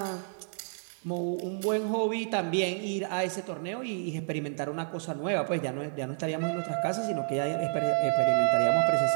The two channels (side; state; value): left; silent; digital silence